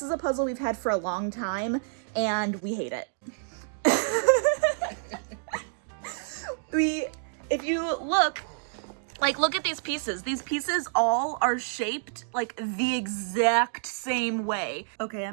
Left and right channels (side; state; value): left; silent; digital silence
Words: is a puzzle we've had for a long time and we hate it. If you look at these pieces. These pieces all are shaped like the exact same way. Okay,